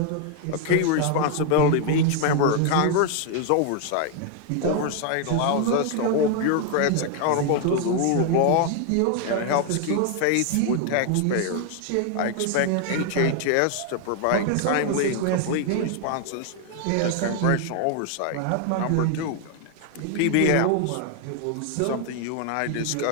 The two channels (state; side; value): different; both; correlation 0.00